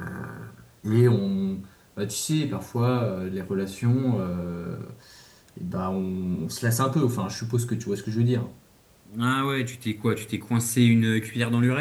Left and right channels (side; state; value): both; identical; correlation 1.00